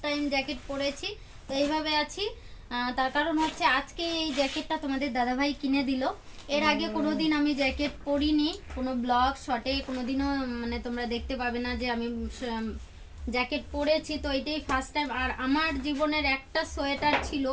টাইম জ্যাকেট পরেছি, তো এইভাবে আছি। তার কারণ হচ্ছে আজকে এই জ্যাকেটটা তোমাদের দাদাভাই কিনে দিল। এর আগে কোনোদিন আমি জ্যাকেট পরিনি, কোনো ব্লগ শটে কোনোদিনও মানে তোমরা দেখতে পাবে না যে আমি জ্যাকেট পরেছি। তো এটাই ফার্স্ট টাইম। আর আমার জীবনের একটা সোয়েটার ছিল,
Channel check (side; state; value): both; identical; correlation 1.00